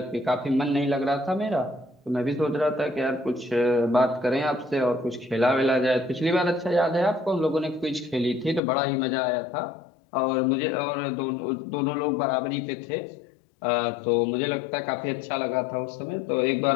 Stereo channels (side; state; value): right; drops out; at 8.6 s